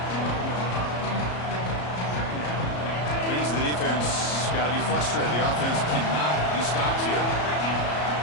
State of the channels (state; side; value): late; right; 34 ms